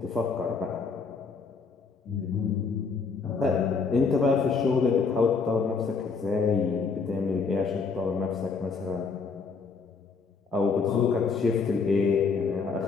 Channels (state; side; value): quieter; right; 4.9 dB